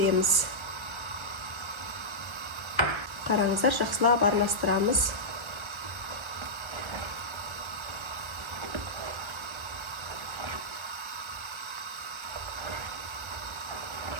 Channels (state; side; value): late; left; 1.1 ms